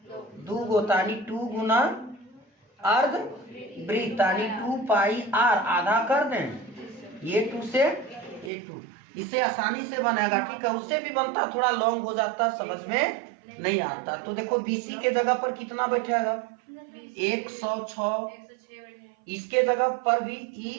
2 गो, तानी 2 गुना अर्धवृत्त, तानी 2 पाई आर, आधा कर दें, ये 2 से ये 2, इसे आसानी से बनेगा, ठीक है। उससे भी बनता, थोड़ा लॉन्ग हो जाता, समझ में नहीं आता। तो देखो बीसी के जगह पर कितना बैठेगा 106, इसके जगह पर भी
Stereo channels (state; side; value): drops out; left; at 8.5 s